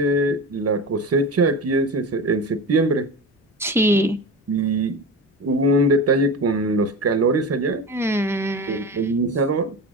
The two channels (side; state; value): both; normal; correlation 0.27